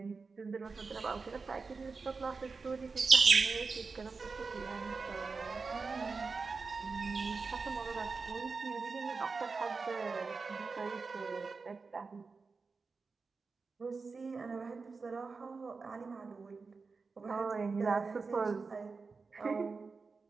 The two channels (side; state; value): left; quieter; 4.5 dB